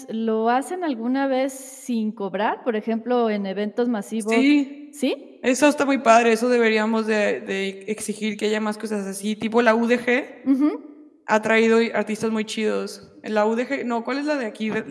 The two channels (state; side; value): identical; both; correlation 1.00